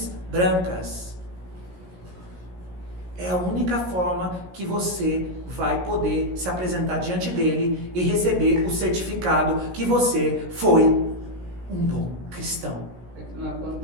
brancas. É a única forma que você vai poder se apresentar diante dele e receber o certificado que você foi um bom cristão. É que não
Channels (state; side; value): late; left; 17 ms